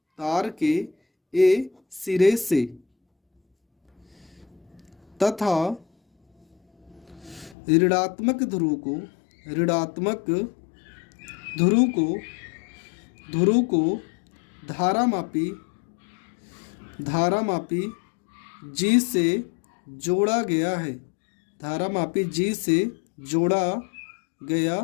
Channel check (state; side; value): drops out; right; at 7.6 s